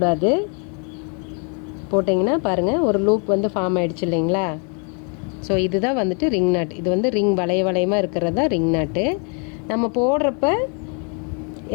போட்டிங்கன்னா பாருங்கள், ஒரு லூப் வந்து ஃபார்ம் ஆகிடுச்சு இல்லைங்களா. ஸோ இதுதான் வந்துட்டு ரிங் நாட். இது வந்து ரிங் வளையமாக இருக்கிறது தான் ரிங் நாட்டு. நம்ம போடுறப்ப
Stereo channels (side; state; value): right; quieter; 39.3 dB